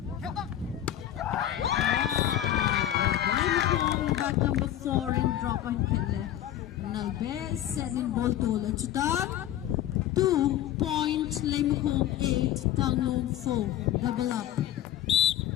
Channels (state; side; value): quieter; right; 12.1 dB